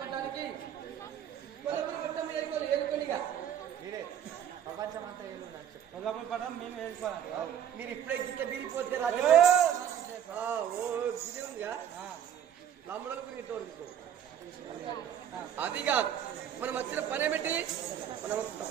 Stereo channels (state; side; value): quieter; left; 9.6 dB